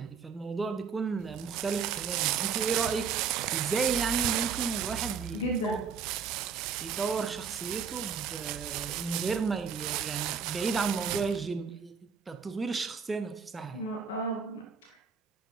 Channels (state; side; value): quieter; left; 6.1 dB